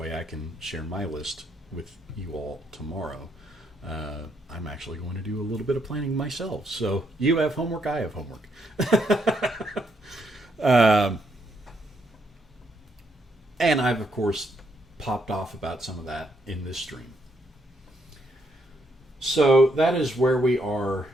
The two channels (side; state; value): both; normal; correlation 0.76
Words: I can share my list with you all tomorrow. I'm actually going to do a little bit of planning myself. So you have homework, I have homework. And I've, of course, popped off about some of that in this stream. So that is where we are